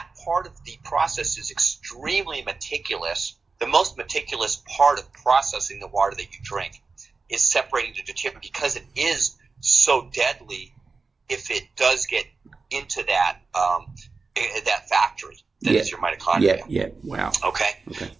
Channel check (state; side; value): quieter; left; 4.3 dB